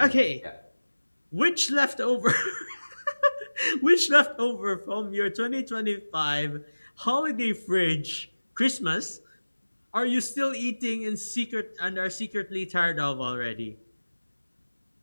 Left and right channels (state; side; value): inverted; both; correlation -1.00